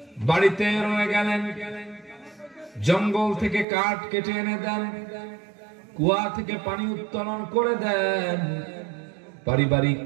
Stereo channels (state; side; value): drops out; left; at 3.7 s